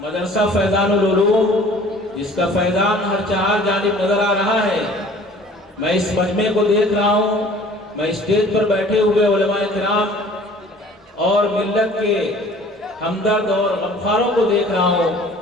مدرسہ فیضان العلوم، جس کا فیضان ہر چہار جانب نظر آ رہا ہے، میں اس مجمع کو دیکھ رہا ہوں، میں اسٹیج پر بیٹھے ہوئے علماء کرام اور ملت کے ہمدرد اور غمخواروں کو دیکھ رہا ہوں،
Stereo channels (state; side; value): normal; both; correlation 0.50